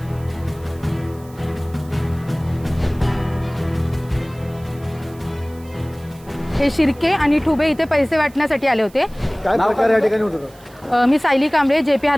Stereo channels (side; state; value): right; noise; hiss, 26 dB below the sound